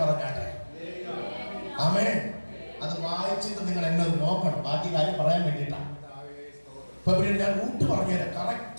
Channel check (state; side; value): inverted; both; correlation -1.00